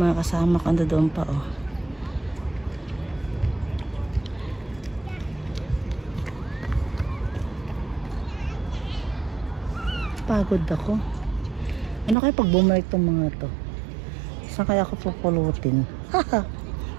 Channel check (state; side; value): drops out; left; at 12.2 s